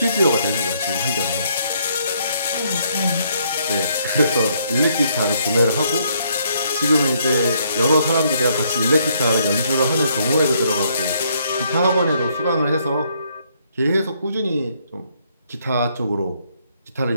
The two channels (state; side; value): inverted; both; correlation -0.70